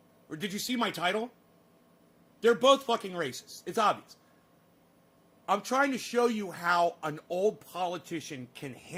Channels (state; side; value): identical; both; correlation 1.00